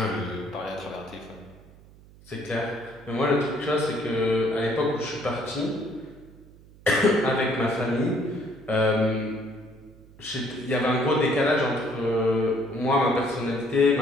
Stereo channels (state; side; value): noise; right; hum, 23 dB below the sound